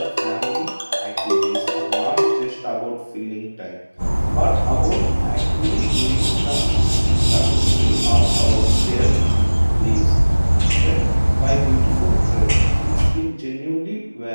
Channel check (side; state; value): both; inverted; correlation -1.00